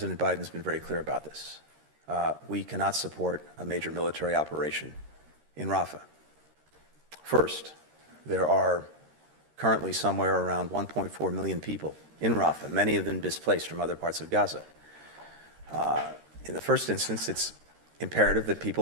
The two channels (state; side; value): late; left; 13 ms